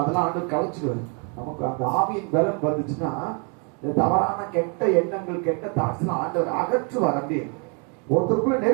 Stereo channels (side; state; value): left; quieter; 36.8 dB